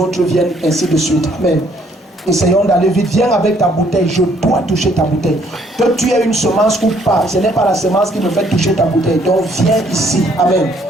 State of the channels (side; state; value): both; normal; correlation 0.65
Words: viennent ainsi de suite. Amen. Essayons d'aller vite. Viens avec ta bouteille. Je dois toucher ta bouteille. Que tu aies une semence ou pas, ce n'est pas la semence qui me fait toucher ta bouteille. Donc viens ici. Amen.